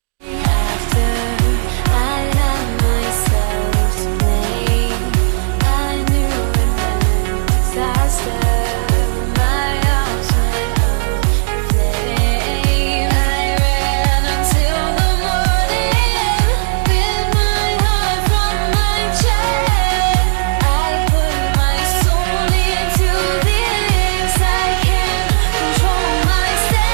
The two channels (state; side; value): silent; left; digital silence